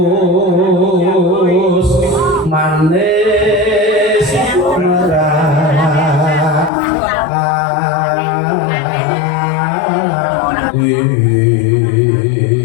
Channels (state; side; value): drops out; right; at 6.7 s